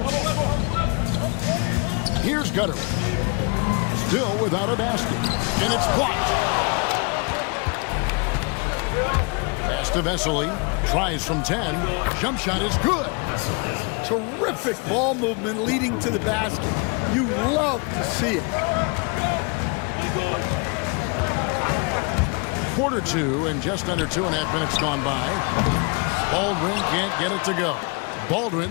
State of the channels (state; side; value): quieter; right; 32.3 dB